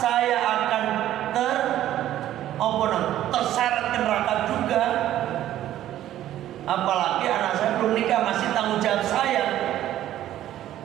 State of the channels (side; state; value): left; quieter; 12.7 dB